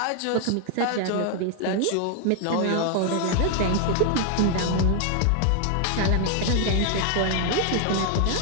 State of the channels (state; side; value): different; both; correlation 0.00